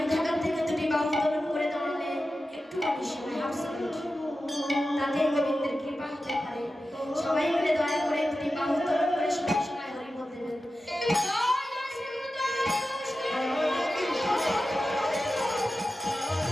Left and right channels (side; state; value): both; normal; correlation 0.93